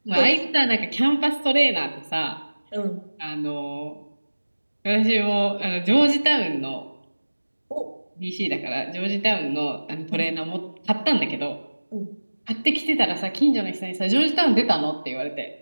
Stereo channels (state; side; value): inverted; both; correlation -1.00